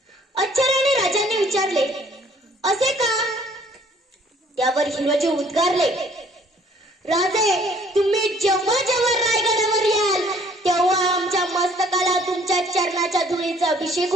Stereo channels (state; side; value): normal; both; correlation 0.58